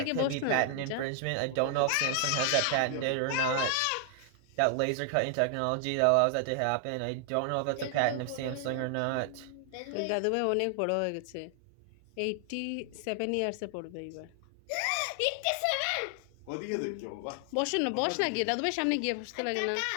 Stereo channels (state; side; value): different; both; correlation 0.00